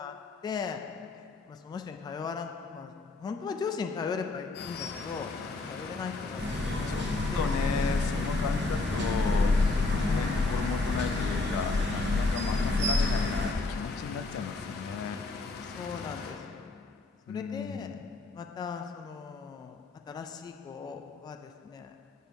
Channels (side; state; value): right; quieter; 3.3 dB